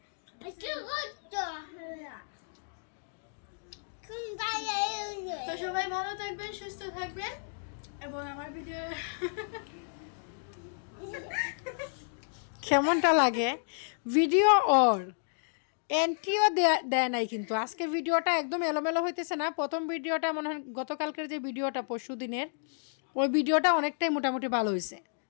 তো সবাই ভালো থাকবেন, সুস্থ থাকবেন, এবং আমার ভিডিও কেমনটা লাগে ভিডিও ওর এন্ট্রিও দেয় নাই, কিন্তু আজকে ভিডিওটা একদম এলোমেলো হইতেছে না। প্রথম ভিডিওটা মনে হয় গতকালকের যে ভিডিওটা, পরশু দিনের ওই ভিডিওটা অনেকটাই মোটামুটি ভালো হয়েছে,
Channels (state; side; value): silent; right; digital silence